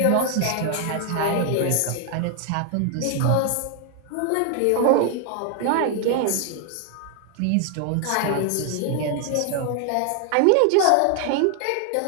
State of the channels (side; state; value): both; different; correlation 0.00